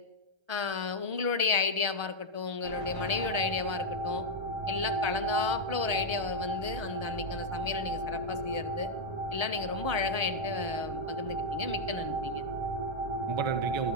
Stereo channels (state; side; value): late; left; 1.3 ms